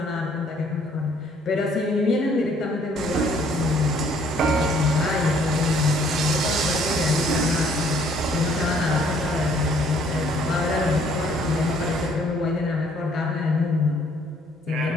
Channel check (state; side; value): normal; both; correlation 0.62